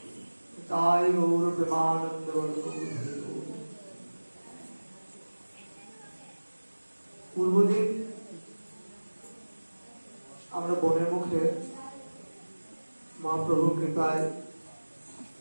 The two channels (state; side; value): inverted; both; correlation -1.00